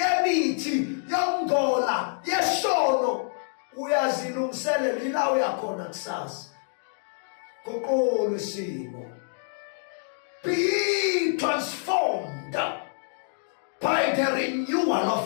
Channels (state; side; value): silent; right; digital silence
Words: yokungola yesono uyazilungiselela ila uyakhona kusasa. Kokolo isimo. Be transformed by the renewal